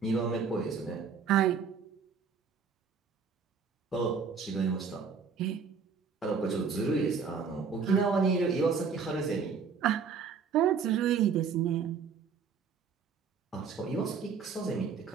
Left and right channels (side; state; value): left; quieter; 5.8 dB